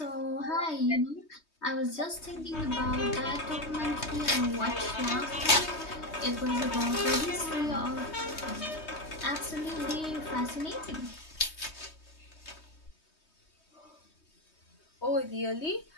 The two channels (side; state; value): right; late; 3.2 ms